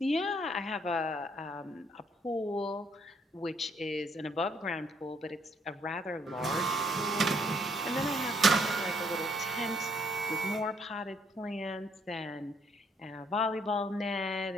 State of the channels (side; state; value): both; normal; correlation 0.68